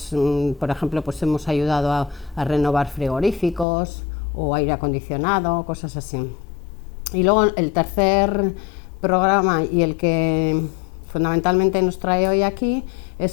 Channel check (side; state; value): right; drops out; at 3.7 s